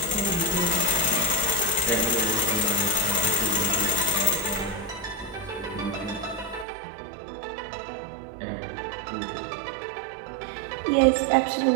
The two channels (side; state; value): left; drops out; at 6.7 s